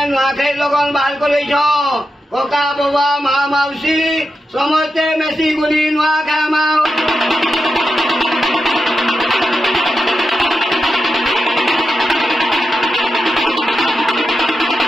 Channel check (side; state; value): both; normal; correlation 0.88